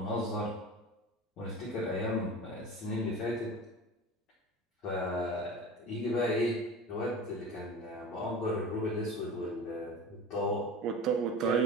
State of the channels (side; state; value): both; normal; correlation 0.33